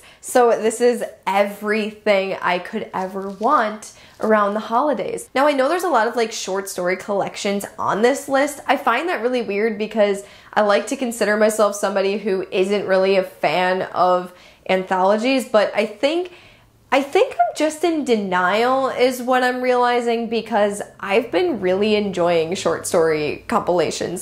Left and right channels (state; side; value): identical; both; correlation 1.00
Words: So this is everything I could ever want around the holidays. Now I know there's a lot of like short story collections on this list. I find that really weird because I like to consider myself somebody who isn't really a fan of anthologies, but I think I'm just in denial is what I'm realizing, because I've been really enjoying short story